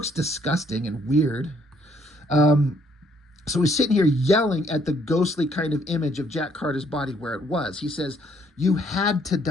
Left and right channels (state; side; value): normal; both; correlation 0.67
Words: disgusting and weird. So he's sitting here yelling at the ghostly kind of image of Jack Carter's body where it was. He says, you had to